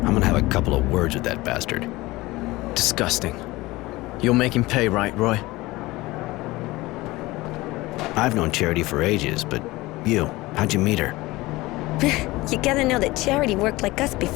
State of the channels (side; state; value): right; quieter; 20.0 dB